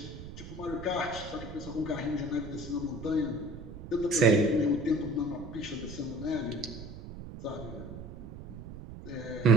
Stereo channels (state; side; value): noise; right; rumble, 12 dB below the sound